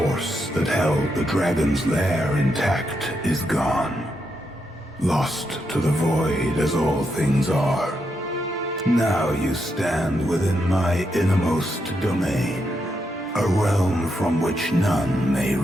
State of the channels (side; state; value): both; normal; correlation 0.82